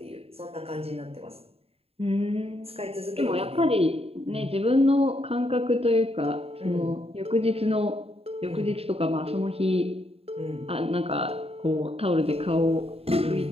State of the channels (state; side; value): late; left; 0.29 ms